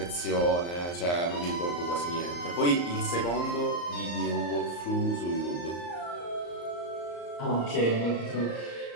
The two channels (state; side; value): late; right; 34 ms